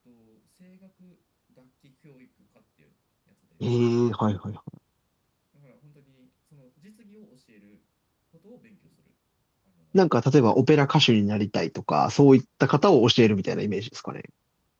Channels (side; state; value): both; identical; correlation 1.00